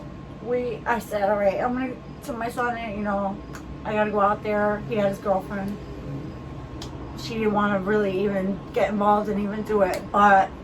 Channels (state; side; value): identical; both; correlation 1.00